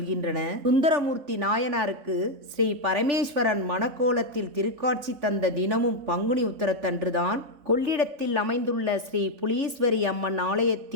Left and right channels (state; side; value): late; left; 3.4 ms